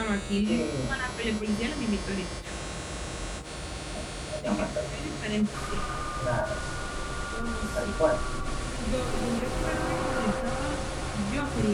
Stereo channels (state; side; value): identical; both; correlation 1.00